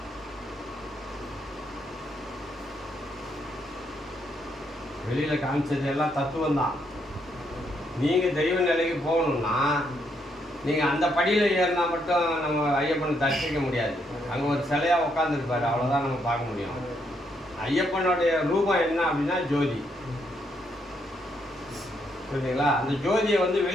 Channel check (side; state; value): both; normal; correlation 0.75